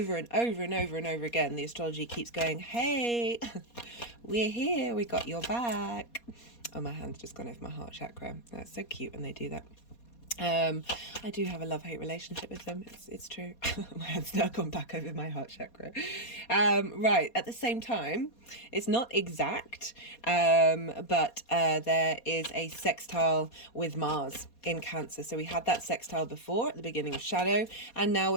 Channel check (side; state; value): right; late; 4.2 ms